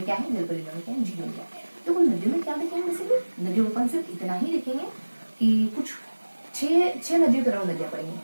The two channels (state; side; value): inverted; both; correlation -1.00